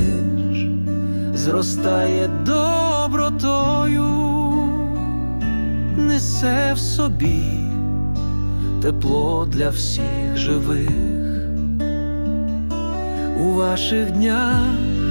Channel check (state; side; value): inverted; both; correlation -1.00